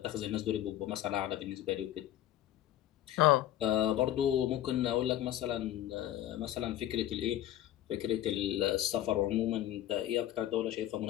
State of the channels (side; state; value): right; quieter; 12.8 dB